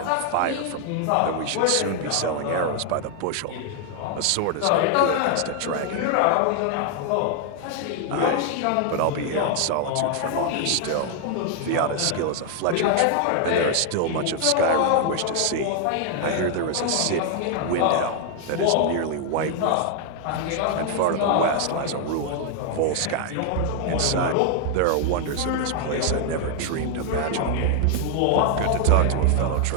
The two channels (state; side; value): different; both; correlation 0.00